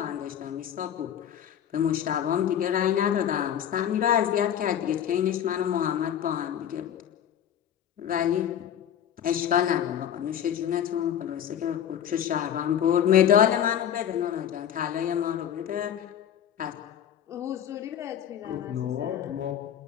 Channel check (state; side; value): quieter; right; 9.7 dB